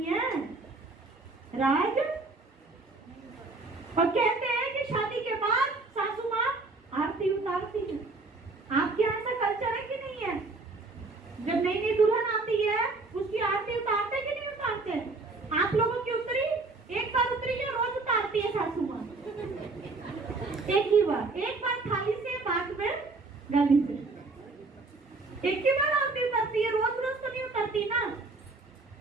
हैं? राज? और कहते हैं कि शादी के बाद सासू माँ आरती उतारती है। आपके यहाँ ऐसा कल्चर है कि नहीं है? जब नई नई दुल्हन आती है, उसकी आरती उतारते कि नहीं उतारते? आप लोगों की उतरी? एक बार उतरी या रोज उतारती है सासू माँ? एक ही बार, एक बार थाली से, बाद में गली से। एक ही बार आरती उतारती है, रोज रोज तो नहीं उतारती ना।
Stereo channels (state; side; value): quieter; left; 3.5 dB